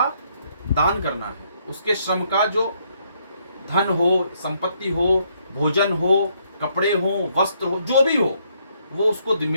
दान करना है, उसके श्रम का जो धन हो, संपत्ति हो, भोजन हो, कपड़े हो, वस्त्र हो, जो भी हो, वो उसको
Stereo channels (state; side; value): inverted; both; correlation -0.72